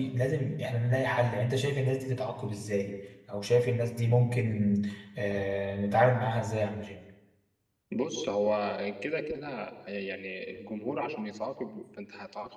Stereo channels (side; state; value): both; identical; correlation 1.00